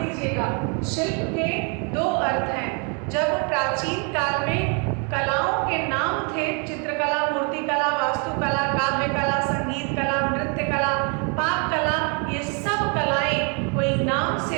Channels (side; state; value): left; quieter; 36.2 dB